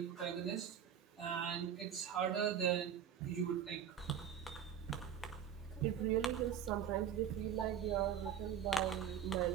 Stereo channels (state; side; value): quieter; left; 8.7 dB